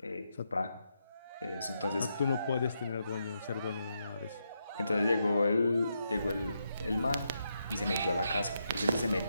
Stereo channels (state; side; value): inverted; both; correlation -0.82